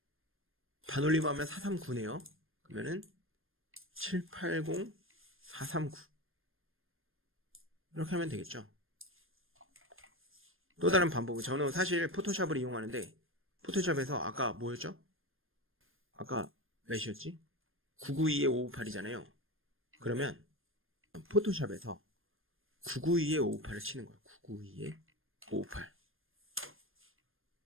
반올림하면 439네요. 그러면은 780 439 이렇게 하면 되겠죠. 또 다른 방법은 저는 사실 포토샵을 이용하는데 포토샵에서 아까 뭐였죠? 아까 몇이었지? 992에 558이잖아요. 그러면 포토샵에서 992에 558을 치는 거예요. 992에 558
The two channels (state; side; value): late; left; 0.60 ms